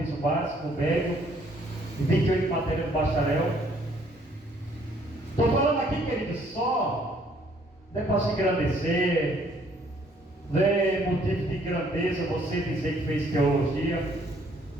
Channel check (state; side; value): normal; both; correlation 0.63